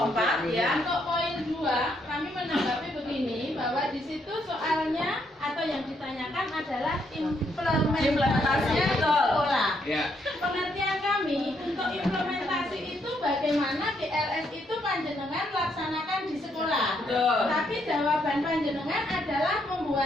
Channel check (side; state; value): both; normal; correlation 0.74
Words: 4 ya. Untuk poin 2, kami menanggapi begini bahwa di situ soalnya atau yang ditanyakan adalah implementasi sekolah. Pengertian kami untuk implementasi itu bagaimana GLS itu panjenengan laksanakan di sekolah. Tapi jawaban panjenengan adalah